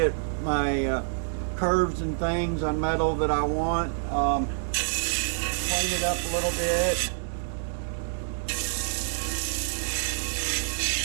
my curves and things on metal that I want. Clean it up a little bit.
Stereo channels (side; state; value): left; silent; digital silence